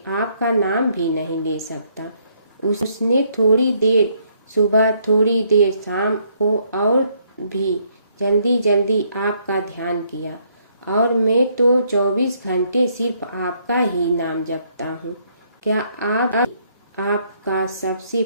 आपका नाम भी नहीं ले सकता। उसने थोड़ी देर सुबह, थोड़ी देर शाम को और भी जल्दी जल्दी आपका ध्यान किया, और मैं तो 24 घंटे सिर्फ आपका ही नाम जपता हूँ। क्या आपका सबसे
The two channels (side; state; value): both; inverted; correlation -0.69